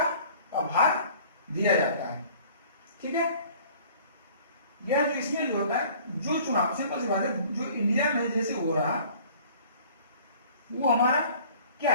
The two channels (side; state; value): both; inverted; correlation -0.50